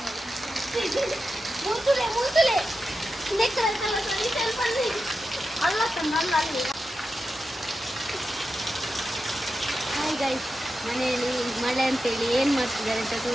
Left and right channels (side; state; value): both; normal; correlation 0.90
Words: ಮುಂತುಲೆ ಮುಂತುಲೆ ಅಲ್ಲ ತಂದಲ್ಲ ಅಲ್ಲಿ. ಹಾಯ್ ಗಾಯ್ಸ್, ಮನೆಯಲ್ಲಿ ಮಳೆ ಅಂತೇಳಿ ಏನು ಮಾಡ್ತಿದ್ದಾರೆ ಅಂತ